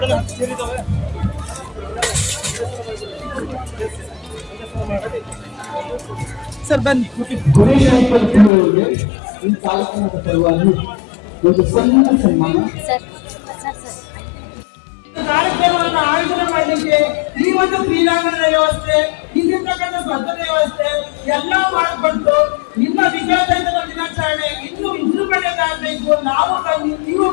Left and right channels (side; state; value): right; drops out; at 8.5 s